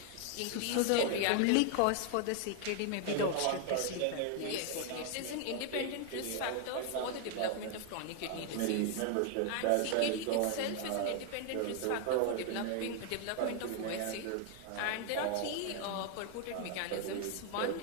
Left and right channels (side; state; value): both; different; correlation 0.00